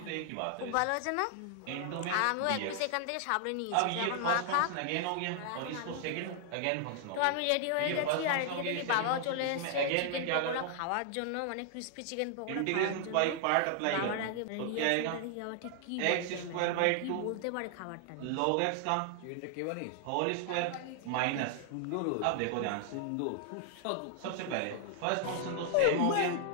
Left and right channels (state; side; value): different; both; correlation 0.00